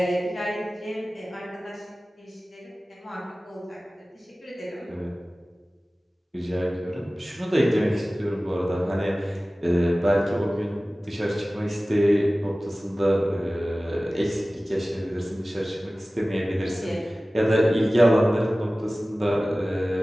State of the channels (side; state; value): both; normal; correlation 0.97